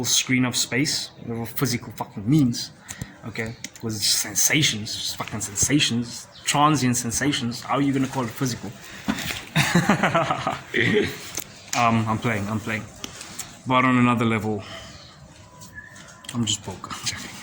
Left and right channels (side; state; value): both; identical; correlation 1.00